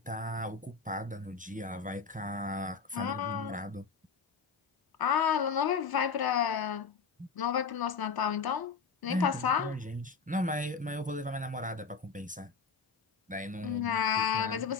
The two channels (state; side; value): quieter; right; 5.4 dB